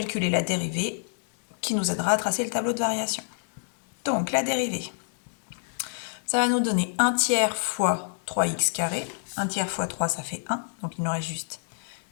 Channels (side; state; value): right; silent; digital silence